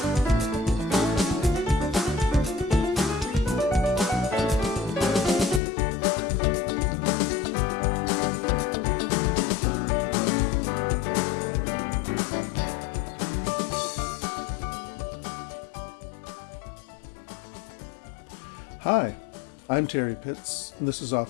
I'm Terry Pitts, and this is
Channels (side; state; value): right; drops out; at 5.6 s